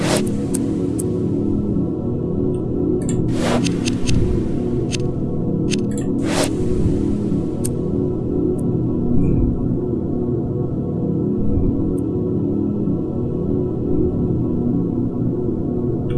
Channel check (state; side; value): identical; both; correlation 1.00